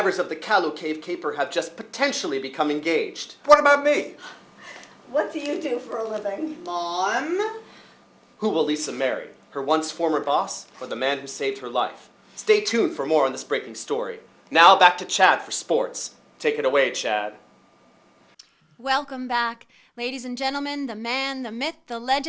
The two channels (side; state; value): both; identical; correlation 1.00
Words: of the Kalu Cave Caper have just potentially become engaged. What about me? What do you do for a living? Mom? Who will Lisa marry? Her once former boss or the man who saved her life? Stay tuned for more on this breaking story. Now back to Chad for sports. Take it away, Chad. Welcome back, ladies and gentlemen, the man, the myth, the